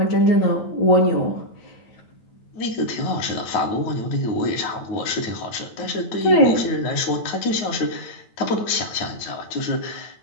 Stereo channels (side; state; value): right; late; 9.5 ms